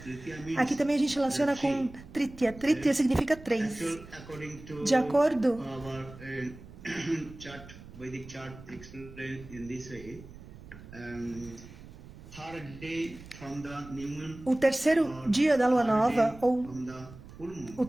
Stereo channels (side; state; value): right; noise; rumble, 17 dB below the sound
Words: Aqui também a gente relaciona com Tritiya. Tritiya significa três. De acordo Vedic chart explained in this way. O terceiro dia da lua nova, ou o